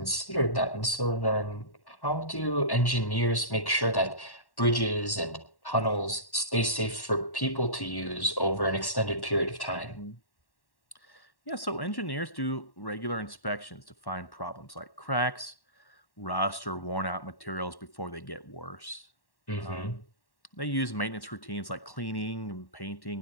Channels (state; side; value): late; right; 1.1 ms